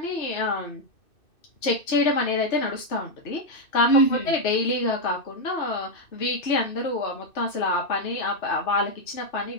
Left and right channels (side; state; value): right; late; 2.6 ms